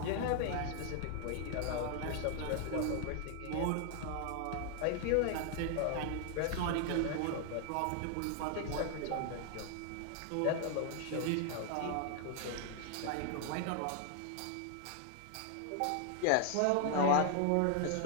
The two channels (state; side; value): different; both; correlation 0.00